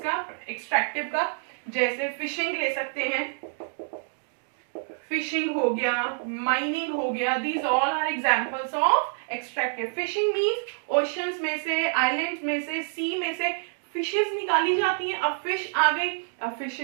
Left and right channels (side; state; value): left; silent; digital silence